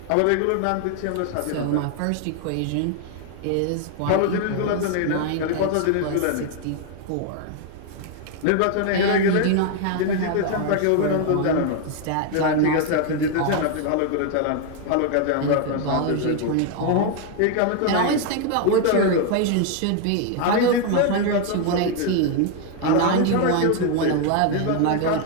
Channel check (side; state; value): both; different; correlation 0.01